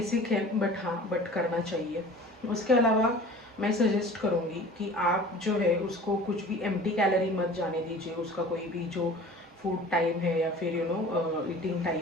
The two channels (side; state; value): both; normal; correlation 0.43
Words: है बट करना चाहिए। उसके अलावा मैं सजेस्ट करूँगी कि आप जो है उसको कुछ भी एम्प्टी कैलोरी मत जाने दीजिए। उसका कोई भी जो फूड टाइम है या फिर ईटिंग